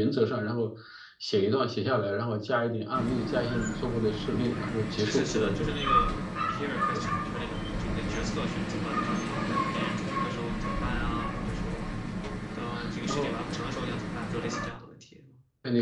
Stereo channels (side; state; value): both; identical; correlation 1.00